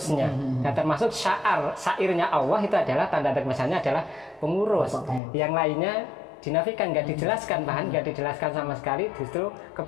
Dan termasuk syairnya Allah itu adalah tanda misalnya adalah pengurus. Yang lainnya dinafikan, nggak dijelaskan, bahkan nggak dijelaskan sama sekali justru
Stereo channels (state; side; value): drops out; right; at 5.2 s